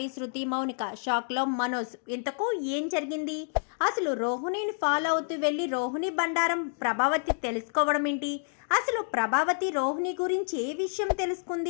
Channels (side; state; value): right; silent; 59 dB below the other